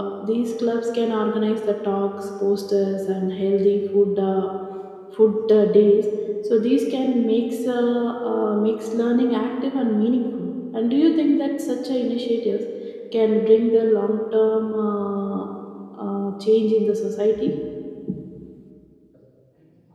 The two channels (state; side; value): identical; both; correlation 1.00